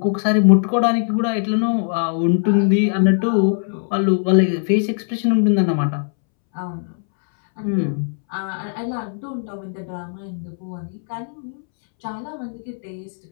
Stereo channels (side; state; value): right; silent; 65 dB below the other